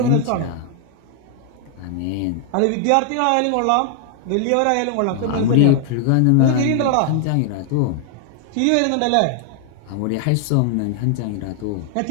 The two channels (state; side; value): different; both; correlation 0.00